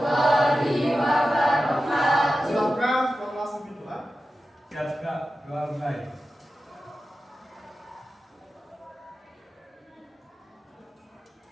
wabarakatuh. Silakan kelas doa. Siap Kak, doa mulai.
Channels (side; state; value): both; normal; correlation 0.93